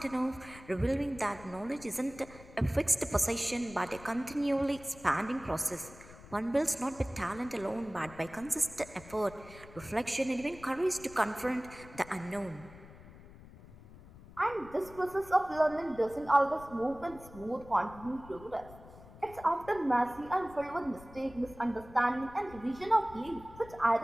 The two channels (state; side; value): noise; left; rumble, 19 dB below the sound